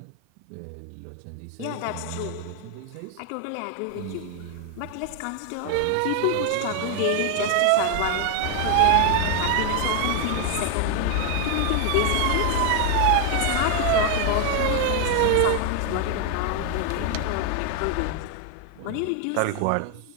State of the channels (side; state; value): both; different; correlation 0.00